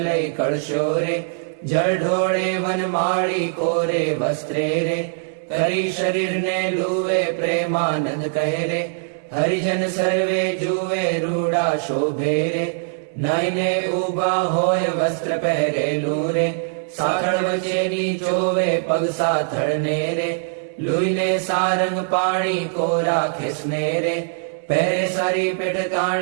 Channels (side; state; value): left; silent; 64 dB below the other